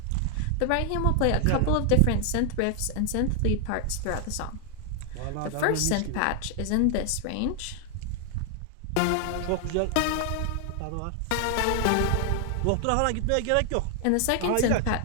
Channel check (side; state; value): both; different; correlation 0.00